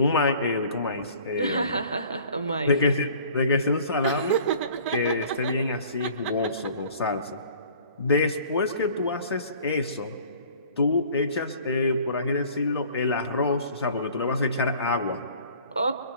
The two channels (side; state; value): both; inverted; correlation -0.50